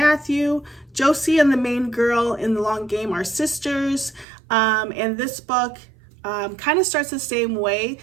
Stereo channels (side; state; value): left; drops out; at 4.2 s